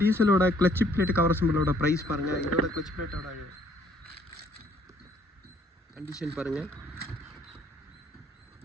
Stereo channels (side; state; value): both; normal; correlation 0.64